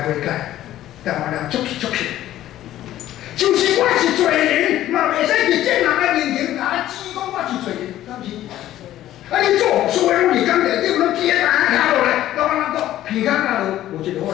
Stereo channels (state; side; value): quieter; right; 13.4 dB